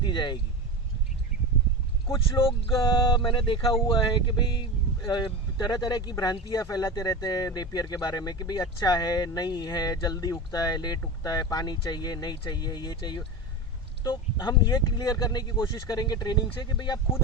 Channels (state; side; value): normal; both; correlation 0.24